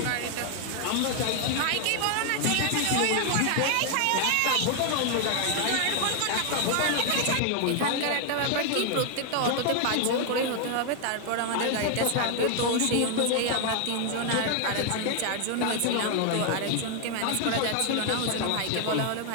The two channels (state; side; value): different; both; correlation 0.00